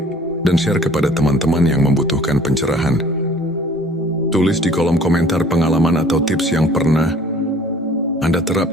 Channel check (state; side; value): normal; both; correlation 0.52